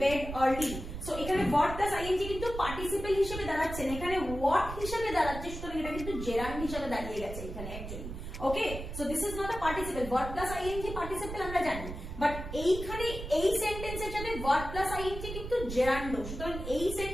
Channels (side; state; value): right; noise; rumble, 8 dB below the sound